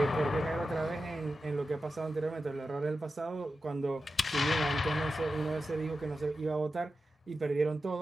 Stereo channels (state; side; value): normal; both; correlation 0.91